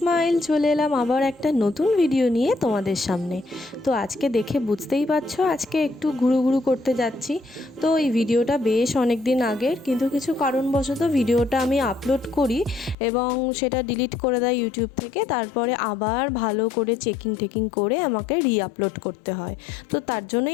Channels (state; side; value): drops out; right; at 13.0 s